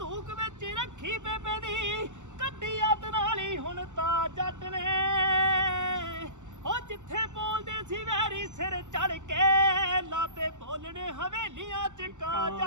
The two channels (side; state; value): left; late; 0.84 ms